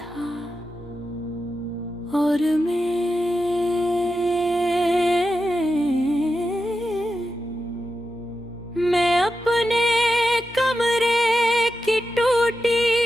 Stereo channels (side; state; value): both; normal; correlation 0.90